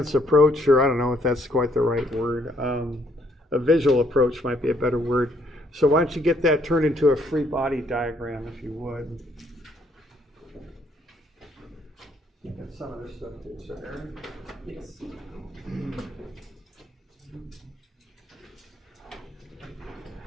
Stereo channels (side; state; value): both; normal; correlation 0.68